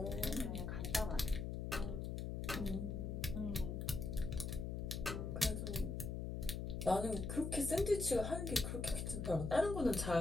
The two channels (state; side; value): noise; left; hum, 3 dB below the sound